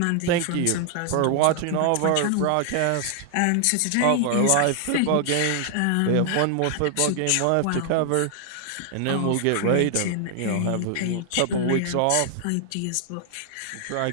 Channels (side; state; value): both; different; correlation 0.00